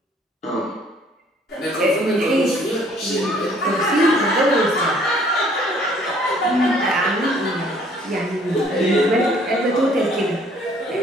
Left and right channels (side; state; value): both; normal; correlation 0.59